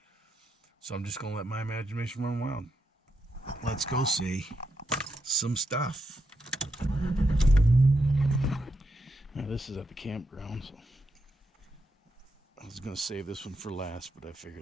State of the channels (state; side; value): normal; both; correlation 0.83